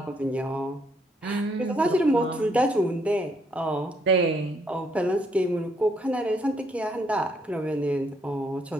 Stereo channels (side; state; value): both; normal; correlation 0.71